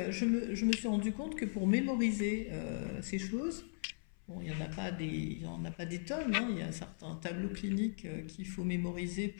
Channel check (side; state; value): right; silent; 52 dB below the other